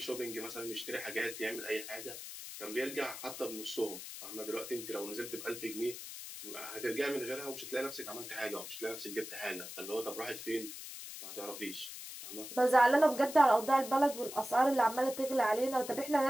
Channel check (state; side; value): noise; left; hiss, 10 dB below the sound